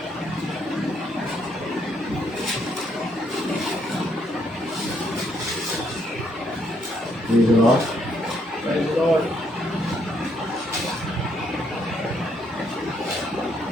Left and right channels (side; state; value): both; normal; correlation 0.72